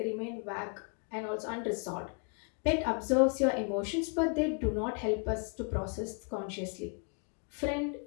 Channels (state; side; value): quieter; right; 38.2 dB